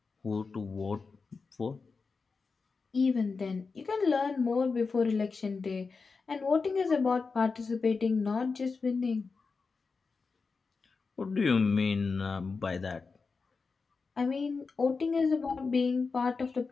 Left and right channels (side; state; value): right; quieter; 4.6 dB